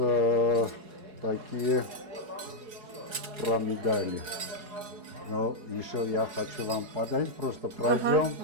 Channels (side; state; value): left; late; 4.7 ms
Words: такие про медали. Но еще я хочу вам подарить, просто пройдем